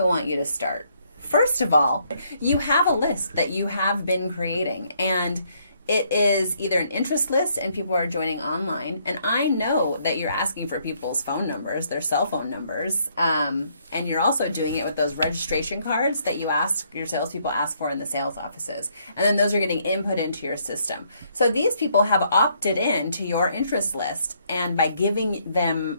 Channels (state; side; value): inverted; both; correlation -0.70